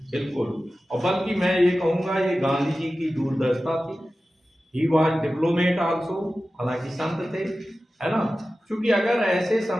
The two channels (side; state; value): both; normal; correlation 0.94